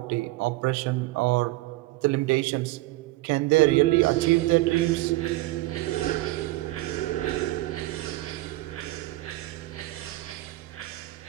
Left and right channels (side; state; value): left; quieter; 18.7 dB